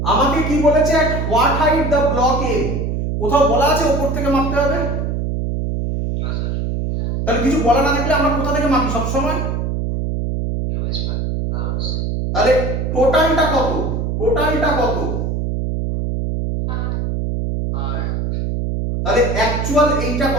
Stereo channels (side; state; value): right; noise; hum, 1 dB below the sound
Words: আমাকে কি বলেছে, at what height the block M, কোথাও বলা আছে উপর থেকে মাপতে হবে? তাহলে কিছু বলা না থাকলে আমরা কোথা থেকে মাপি সব সময়? তাহলে টোটালটা কত? টোটালটা কত? তাহলে অ্যাকচুয়াল এইটা